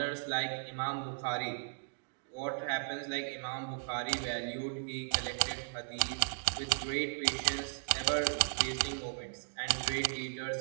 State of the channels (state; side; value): silent; left; digital silence